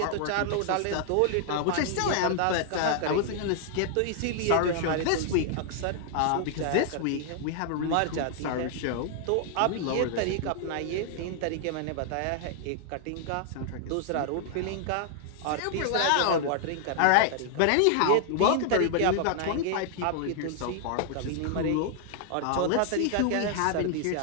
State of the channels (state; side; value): different; both; correlation -0.01